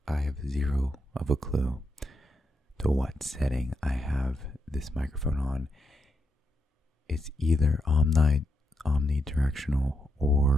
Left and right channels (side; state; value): both; normal; correlation 0.83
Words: have zero of a clue to what setting I have this microphone on. It's either omnidirectional